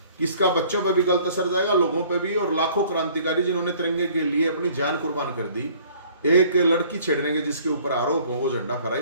कि इसका बच्चों पे भी गलत असर जाएगा, लोगों पे भी, और लाखों क्रांतिकारी जिन्होंने तिरंगे के लिए अपनी जान कुर्बान कर दी, एक लड़की छेड़ने के जिसके ऊपर आरोप हो वो झंडा फहराई,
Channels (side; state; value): both; inverted; correlation -0.55